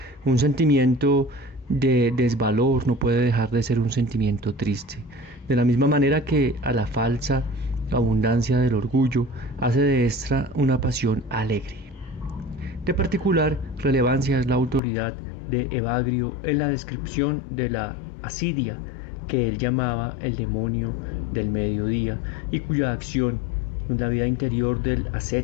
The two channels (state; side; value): drops out; right; at 14.8 s